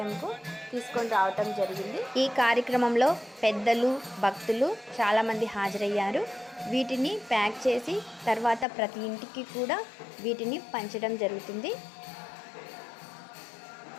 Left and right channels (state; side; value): drops out; right; at 8.7 s